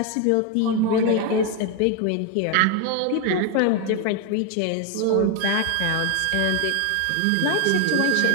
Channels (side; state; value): both; different; correlation 0.01